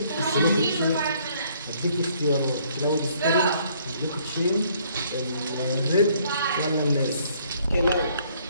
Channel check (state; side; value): inverted; both; correlation -0.64